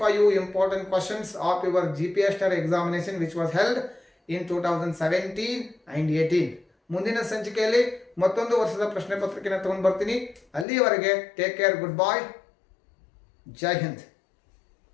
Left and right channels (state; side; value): drops out; right; at 10.7 s